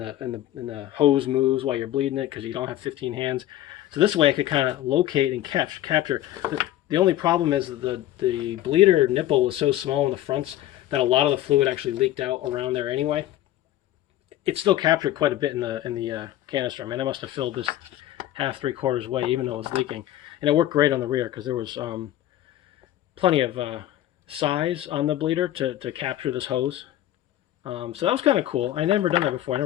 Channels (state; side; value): quieter; right; 13.5 dB